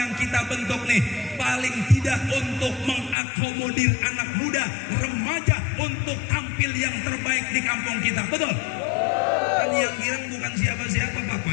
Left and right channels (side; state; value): right; drops out; at 3.2 s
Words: kita bentuk nih paling tidak untuk mengakomodir anak muda, remaja untuk tampil yang terbaik di kampung kita, betul? Kan yang girang bukan siapa-siapa,